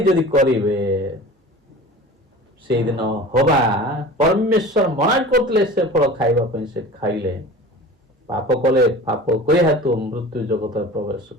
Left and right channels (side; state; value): both; normal; correlation 0.38